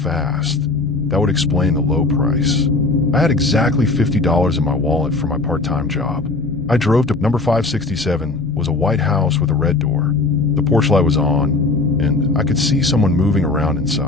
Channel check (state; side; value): quieter; right; 3.4 dB